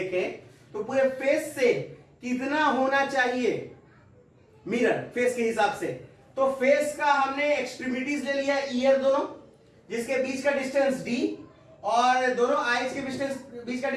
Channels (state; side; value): identical; both; correlation 1.00